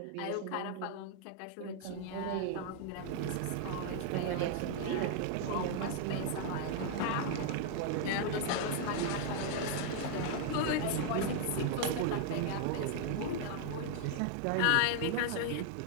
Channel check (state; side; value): different; both; correlation 0.00